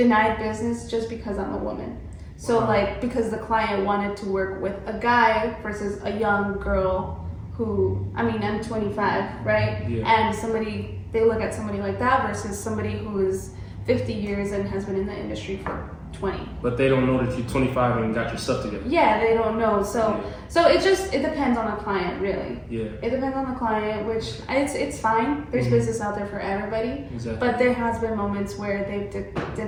business just because I'm a woman. So like, because the client wanted to work with a guy versus a young girl who, I mean, I'm 25, right? And they look at somebody like that versus somebody who is 50 years and has been in the industry for 20. But they don't know that you're 25 and got your stuff together. Yeah, they don't know. So it depends on the client, really. It depends on the client, which it's fine. There's business out there for everybody. Exactly. But there has been moments where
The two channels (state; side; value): identical; both; correlation 1.00